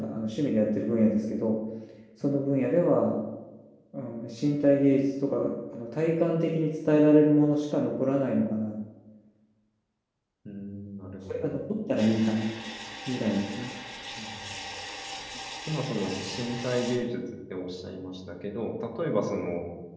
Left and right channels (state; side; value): identical; both; correlation 1.00